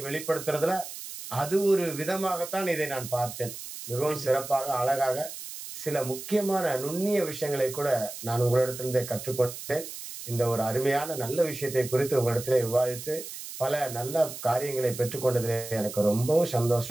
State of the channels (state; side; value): noise; right; hiss, 10 dB below the sound